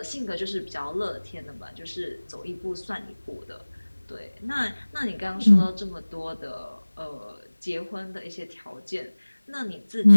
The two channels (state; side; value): inverted; both; correlation -1.00